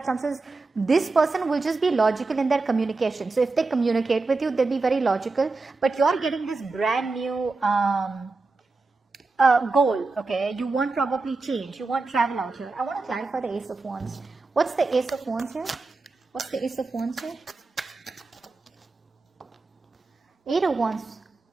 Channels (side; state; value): left; quieter; 3.7 dB